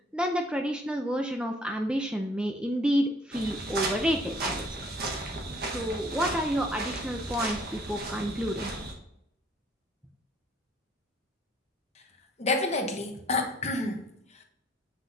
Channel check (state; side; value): normal; both; correlation 0.59